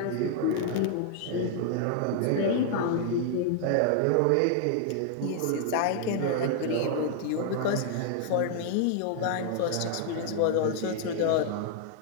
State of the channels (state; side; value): different; both; correlation 0.00